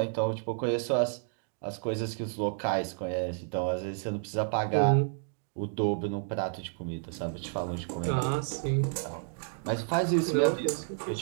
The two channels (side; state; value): left; silent; digital silence